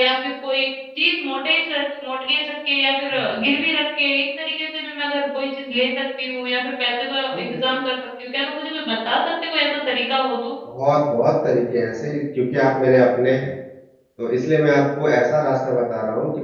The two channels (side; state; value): both; identical; correlation 1.00